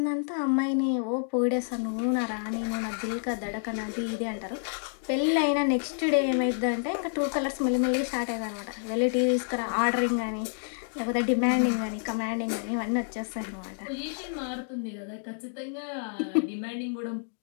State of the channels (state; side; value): silent; right; digital silence